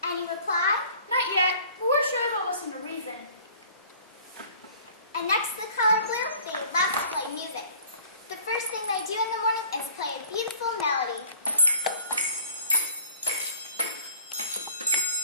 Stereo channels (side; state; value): both; inverted; correlation -0.51